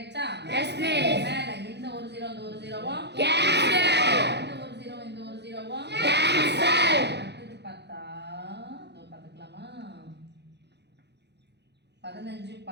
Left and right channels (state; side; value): late; left; 0.50 ms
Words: Yes, miss. மேல இந்த ஒரு 0 இந்த ஒரு 0வும் Cancel. இந்த ஒரு 0 இந்த ஒரு 0வும் Cancel. அடுத்து பார்த்தா இதோ பார்த்துக்கலாமா? 15